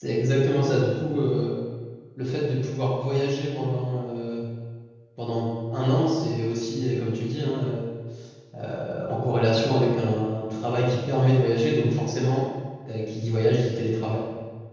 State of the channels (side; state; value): both; identical; correlation 1.00